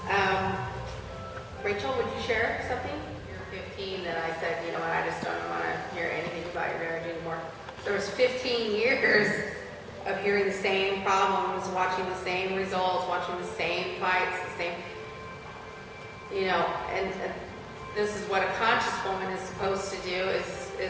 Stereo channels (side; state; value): both; identical; correlation 1.00